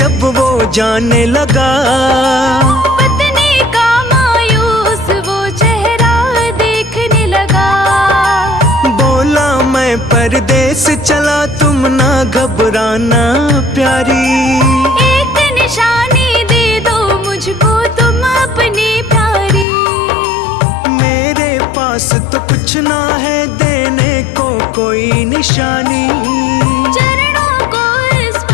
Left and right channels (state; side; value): drops out; right; at 19.7 s